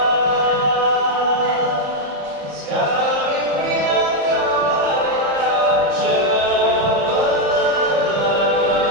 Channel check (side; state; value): left; late; 34 ms